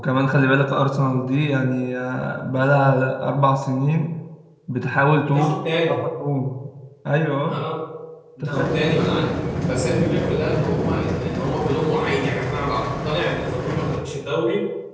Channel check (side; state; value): both; identical; correlation 1.00